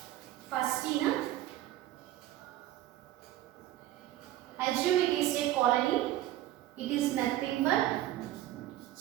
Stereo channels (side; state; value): left; quieter; 14.0 dB